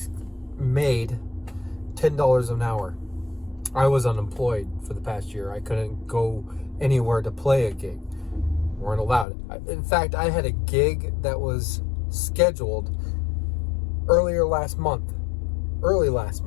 $10 an hour. I was unemployed for the past year. I couldn't go anywhere to play a gig. Weren't allowed. In fact, I had a gig that was scheduled early last month.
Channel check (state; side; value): drops out; right; at 9.2 s